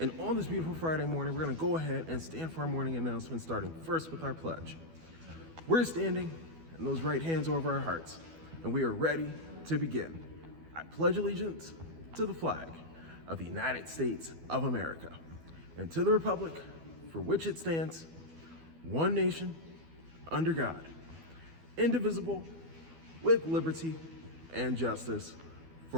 And on this beautiful Friday morning, we're going to go ahead and stand for our morning announcement, starting first with our pledge. We're standing, and those right hands over our hearts, and we are ready to begin. I pledge allegiance to the flag of the United States of America and to the republic for which it stands, one nation, under God, indivisible, with liberty and justice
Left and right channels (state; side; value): late; left; 12 ms